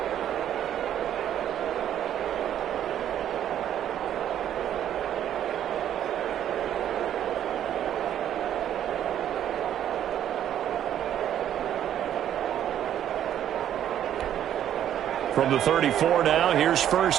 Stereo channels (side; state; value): left; quieter; 10.6 dB